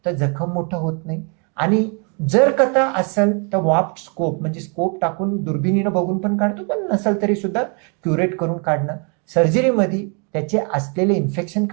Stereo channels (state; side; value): quieter; left; 36.4 dB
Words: तर जखम मोठं होत नाही. आणि जर कथा असेल तर वाफ्ट स्कोप म्हणजे स्कोप टाकून दुर्बिणीनं बघून पण काढतो, पण नसेल तरी सुद्धा क्युरेट करून काढणं. सर्जरीमध्ये त्याचे असलेले इन्फेक्शन